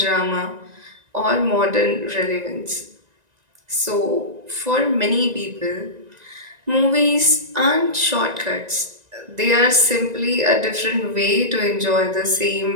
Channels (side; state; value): left; late; 1.9 ms